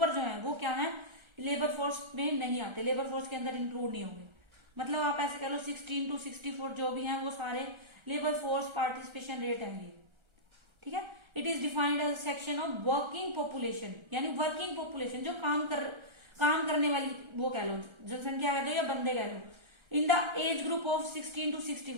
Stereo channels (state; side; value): late; left; 1.3 ms